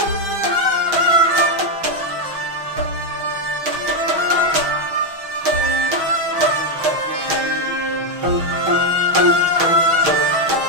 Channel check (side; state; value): left; late; 6.5 ms